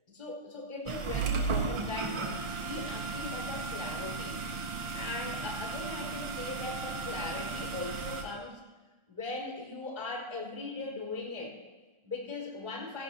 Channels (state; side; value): late; left; 1.4 ms